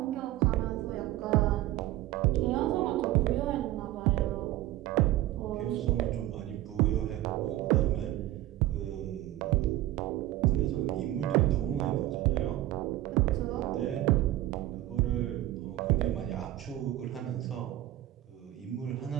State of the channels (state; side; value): quieter; left; 15.1 dB